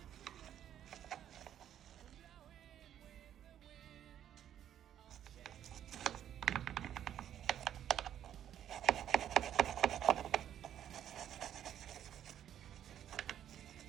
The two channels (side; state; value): left; quieter; 10.4 dB